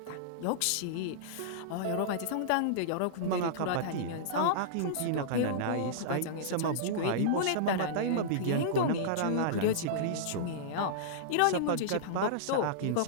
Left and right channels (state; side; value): different; both; correlation -0.03